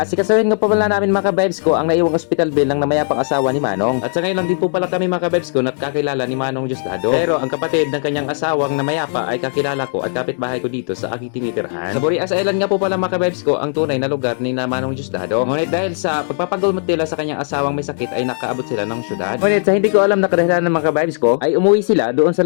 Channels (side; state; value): right; silent; 68 dB below the other